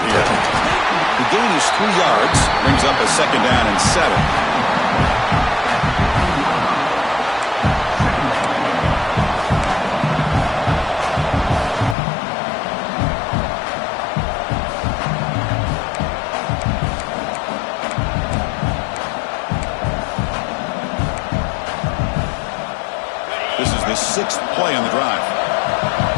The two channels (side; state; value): right; drops out; at 12.0 s